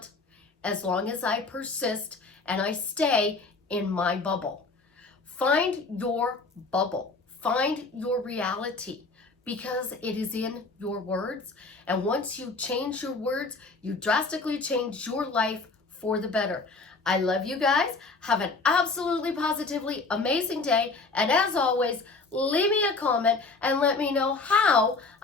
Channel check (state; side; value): quieter; right; 3.8 dB